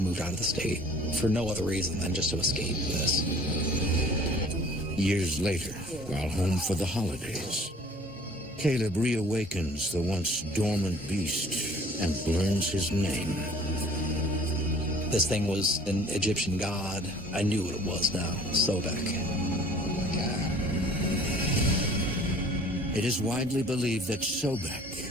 out of the state for no other reason than just to escape this. Years later, while home for the holidays, Caleb reawakens the once dormant beast and learns his name. This thing was an Egyptian god. I knew what it was now, Sobek. It is widely believed that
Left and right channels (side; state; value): both; normal; correlation 0.51